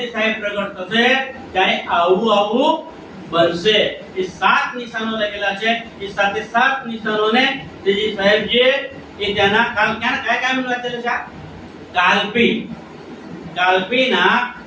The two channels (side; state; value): both; identical; correlation 1.00